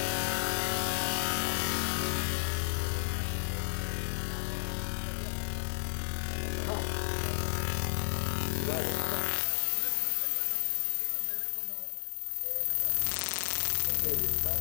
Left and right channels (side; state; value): right; silent; 56 dB below the other